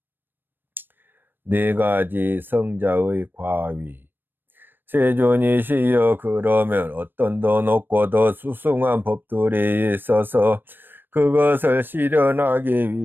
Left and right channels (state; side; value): late; left; 0.095 ms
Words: 네 가지 성자의 과위. 세존이시여 그러면 어떤 더 높고 더 수승한 법들이 있어서 그것을 실현하기